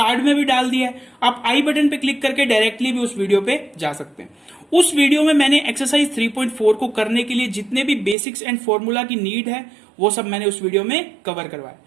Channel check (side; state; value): left; drops out; at 8.2 s